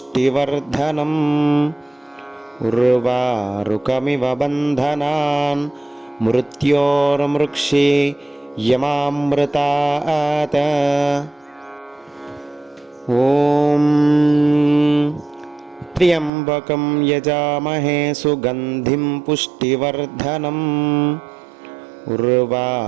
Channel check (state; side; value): drops out; left; at 16.3 s